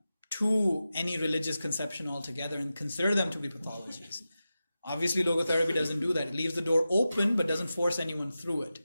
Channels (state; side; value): inverted; both; correlation -0.93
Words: to any religious conception altogether and consider them to be pathologies. Obviously, logotherapy doesn't do that. It leaves the door open but doesn't force anyone through it.